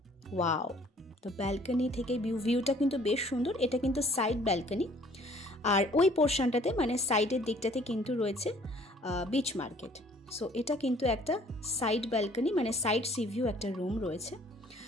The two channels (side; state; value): both; normal; correlation 0.57